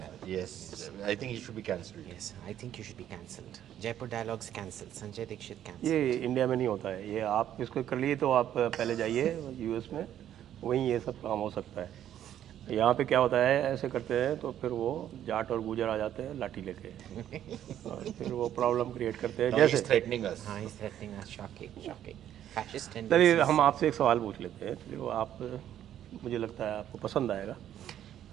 Yes, I think he should be cancelled. Yes, I think you should be cancelled. Jaipur Dialogues cancelled. Sanjay Dikshit cancelled. ये India में नहीं होता है। ये आप इसको कर लिए तो आप पहले जाइए यूएस में, वहीं ये सब काम हो सकता है। यहाँ पे क्या होता है, ऐसे करते हैं तो फिर वो जाट और गुजर आ जाते हैं लाठी लेके और फिर वो प्रॉब्लम क्रिएट करते हैं। Now जैसे he's threatening us. He's threatening us. Shocking, shocking. Fascist चलिए tendencies. हम आपसे एक सवाल पूछ लेते हैं। चलिए वो आप, मुझे लगता है आपको पसंद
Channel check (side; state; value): left; quieter; 10.9 dB